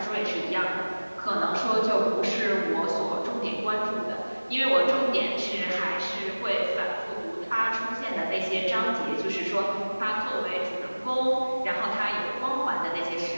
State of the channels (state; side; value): inverted; both; correlation -1.00